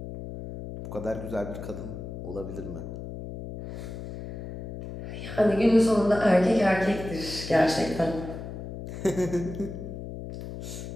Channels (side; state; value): left; noise; hum, 9 dB below the sound